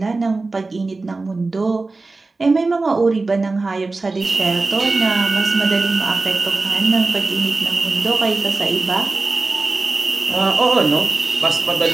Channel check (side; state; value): left; quieter; 3.6 dB